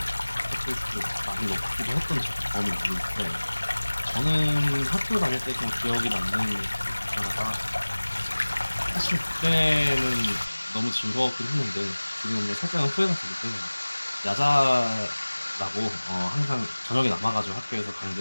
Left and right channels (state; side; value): inverted; both; correlation -1.00